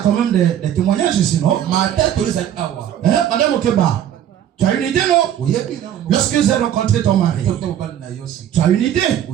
même des témoignages ici, non? Madame Okeba, tu as une idée, non? Lorsque j'ai rencontré ton mari, tu as une idée?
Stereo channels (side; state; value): left; quieter; 10.5 dB